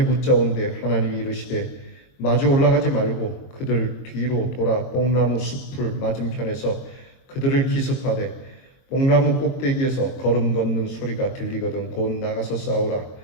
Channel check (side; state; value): right; late; 22 ms